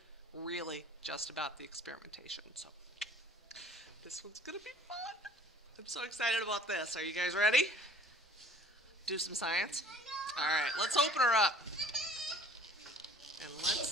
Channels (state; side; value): normal; both; correlation 0.51